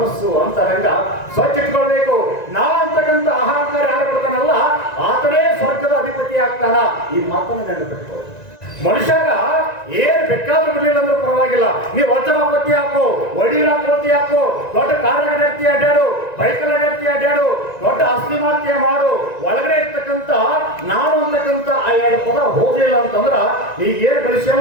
ಅಂತರಂಗ ಸ್ವಚ್ಛ ಇಟ್ಕೊಳ್ಬೇಕು. ನಾ ಅಂತಕ್ಕಂಥ ಅಹಂಕಾರ ಯಾರು ಬಿಡ್ತಾನಲ್ಲ ಆತನೇ ಸ್ವರ್ಗದ ಅಧಿಪತಿ ಆಗ್ತಾನ. ಈ ಮಾತನ್ನು ನೆನಪಿಟ್ಕೊಳ್ಳಿ. ಮನುಷ್ಯಾಗ ಏನ್ ಬೇಕಾದ್ರೂ ಬಿಡ್ಲಿಲ್ಲ ಅಂದ್ರೆ ಪರವಾಗಿಲ್ಲ, ನೀವು ವಚನಾಪತಿ ಹಾಕೋ, ವಡೀರಾಪತಿ ಹಾಕೋ, ದೊಡ್ಡ ಕಾರ್ಯಗತಿ ಅಡ್ಡಾಡು, ಬೈಕಲ್ ಅಡ್ಡಾಡ್ತಿ ಅಡ್ಡಾಡು, ದೊಡ್ಡ ಆಸ್ತಿ ಮಾರ್ತಿಯ ಮಾಡು, ಒಳಗಡೆ ಇರ್ತಕ್ಕಂಥ ನಾನು ಅಂತಕ್ಕಂಥ ಆ ಎರಡು ಪದ ಹೋಗ್ಲಿಲ್ಲ ಅಂತಂದ್ರ ಈಗ ಏನ್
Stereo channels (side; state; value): right; late; 1.9 ms